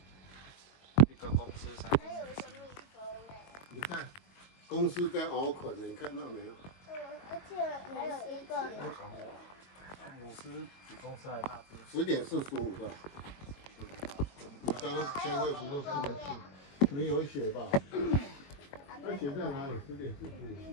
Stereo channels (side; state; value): right; late; 21 ms